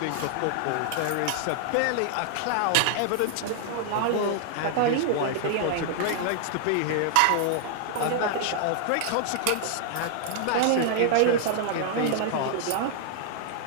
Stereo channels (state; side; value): different; both; correlation -0.01